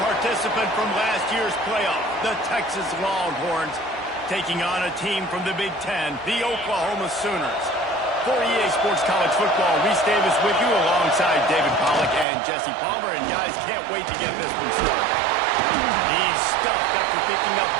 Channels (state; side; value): drops out; left; at 12.2 s